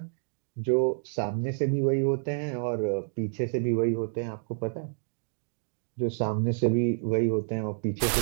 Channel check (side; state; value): left; silent; digital silence